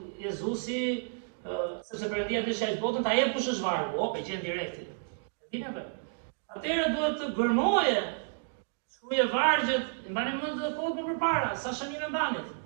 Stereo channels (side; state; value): left; silent; digital silence